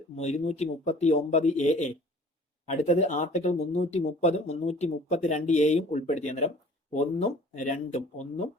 239 AA. അടുത്തത് ആർട്ടിക്കിൾ 330 332 എയും ഉൾപ്പെടുത്തി. അന്നേരം 1ഉം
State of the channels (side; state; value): both; normal; correlation 0.49